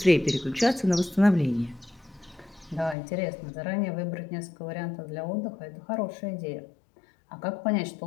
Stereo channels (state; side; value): drops out; right; at 3.0 s